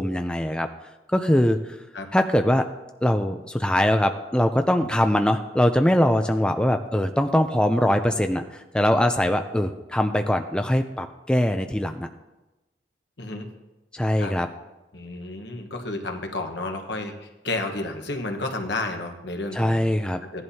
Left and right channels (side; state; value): both; normal; correlation 0.88